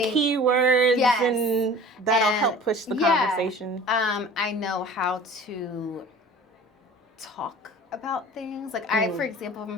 keywords, and that'll help push the conversation. I know how to talk about things. I, for example,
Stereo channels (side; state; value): both; normal; correlation 0.43